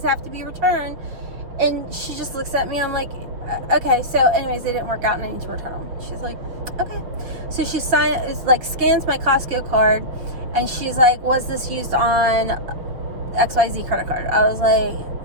have to be returned. And she just looks at me. I'm like, okay. So anyways, they didn't work out and I need to return them. She's like, okay. So she scans my Costco card, and she's like, was this used on XYZ credit card. I was like,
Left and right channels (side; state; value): left; late; 6.2 ms